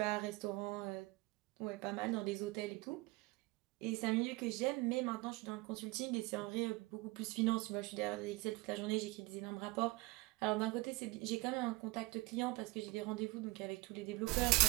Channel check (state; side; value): quieter; left; 22.6 dB